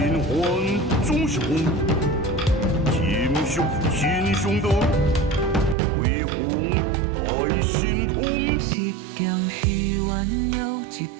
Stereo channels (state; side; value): drops out; left; at 5.8 s